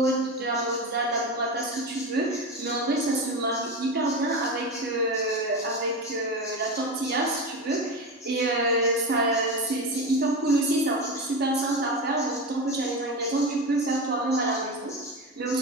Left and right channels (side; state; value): both; normal; correlation 0.21